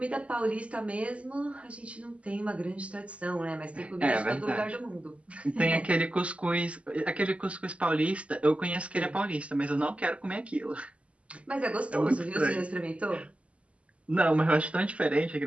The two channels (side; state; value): left; late; 0.062 ms